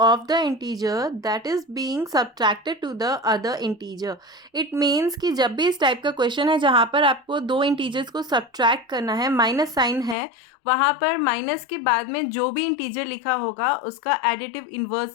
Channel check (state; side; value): drops out; right; at 10.2 s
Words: of the integer that is being subtracted to the other integer. It means कि जब भी इस type का question है जहाँ पर आपको दो इंटीजर्स को सब्ट्रैक्ट करना है, माइनस साइन है, वहाँ पर माइनस के बाद में जो भी इंटीजर लिखा होगा उसका एडिटिव इन्वर्स